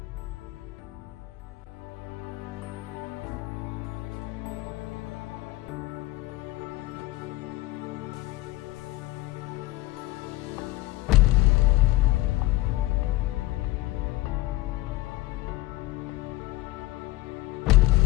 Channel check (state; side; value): quieter; right; 18.4 dB